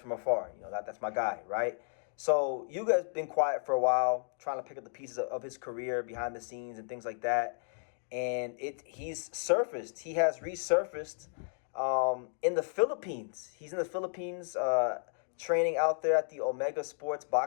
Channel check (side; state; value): right; silent; digital silence